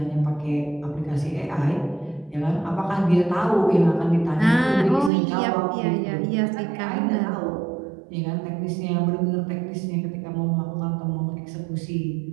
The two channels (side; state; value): left; drops out; at 5.1 s